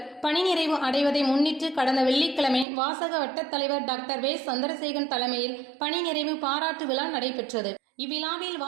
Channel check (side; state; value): left; drops out; at 2.7 s